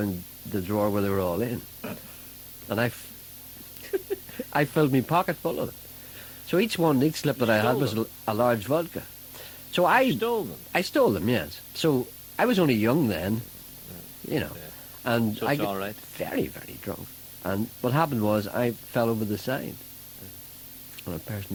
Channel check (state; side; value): identical; both; correlation 1.00